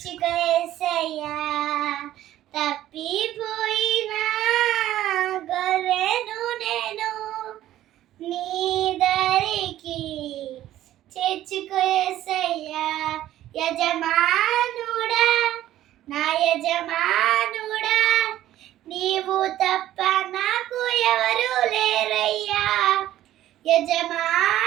తప్పిపోయిన గొర్రెను నేను నీ దరికి చేర్చుకేసయ్యా. యజమానుడా, నా యజమానుడా, నీవు తప్ప నాకు ఎవరు లేరయ్యా.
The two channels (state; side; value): quieter; left; 13.4 dB